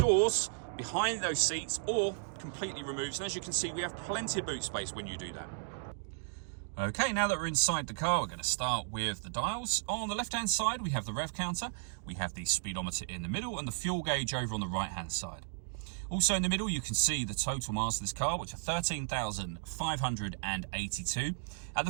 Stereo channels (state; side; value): silent; left; digital silence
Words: behind those seats or completely removes. And as you can see, we have plenty of boot space when you do that. Okay, now that we're inside the car, we're going to start with the dials. On the left-hand side, we have the rev counter, we have the speedometer in the middle, and the fuel gauge over on the right-hand side. Also in the middle, you can see the total miles of this car, which are 13,582. At